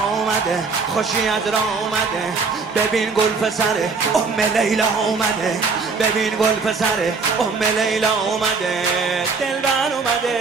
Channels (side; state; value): left; quieter; 4.6 dB